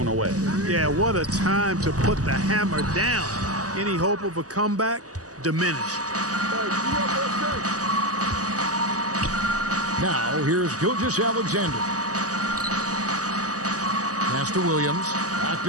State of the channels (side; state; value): left; late; 0.67 ms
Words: away. Yeah, what a time to put the hammer down. Any hope of a comeback diminished. Now, here's Gilgeous-Alexander. Pass to Williams. Back